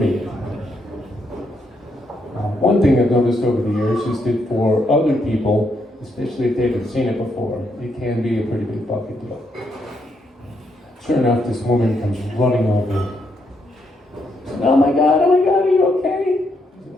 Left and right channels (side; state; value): both; normal; correlation 0.77